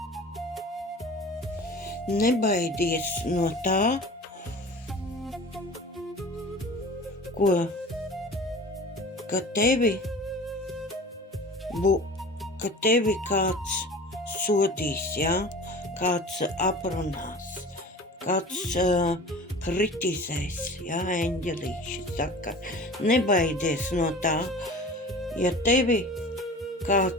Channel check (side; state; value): both; normal; correlation 0.39